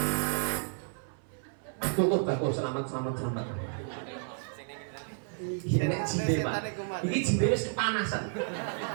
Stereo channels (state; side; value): silent; left; 57 dB below the other